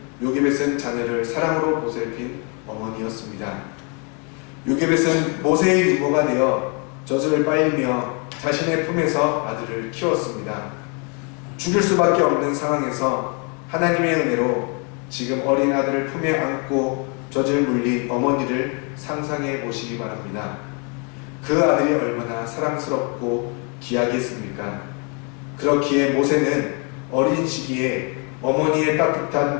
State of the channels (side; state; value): right; quieter; 34.9 dB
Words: 요게벳은 자녀를 사랑으로 보살핀 어머니였습니다. 요게벳은 모세의 유모가 되어 젖을 빨리며 자신의 품에서 아들을 키웠습니다. 죽일 수밖에 없는 상황에서 하나님의 은혜로 지금 어린 아들을 품에 안고 젖을 물린 어머니를 상상해 보시기 바랍니다. 그 아들이 얼마나 사랑스럽고 귀하겠습니까? 그렇기에 모세는 어린 시기에 어머니의